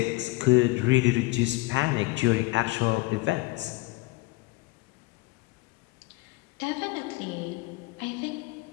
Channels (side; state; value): right; quieter; 21.6 dB